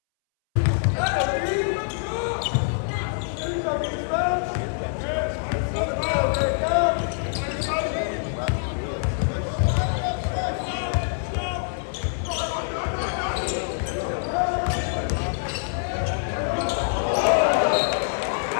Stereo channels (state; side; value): silent; right; 62 dB below the other